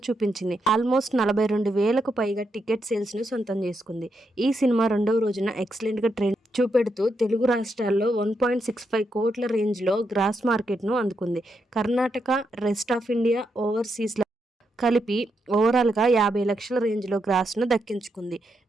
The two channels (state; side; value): normal; both; correlation 0.82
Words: చూపించింది. ఆల్మోస్ట్ 42,000కు పైగా టికెట్ సేల్స్ను సొంతం చేసుకుంది. ఈ సినిమా రెండవ రోజున ఎక్సలెంట్గా ట్రెండ్ చూపెడుతూ తెలుగు రాష్ట్రాల్లో 1.65 కోట్ల రేంజ్లో గ్రాస్ మార్కెట్ను అందుకుంది. Karnataka, rest of India, overseas కలిపి ఓవరాల్గా 50 లక్షల రేంజ్లో గ్రాస్ను దక్కించుకుంది.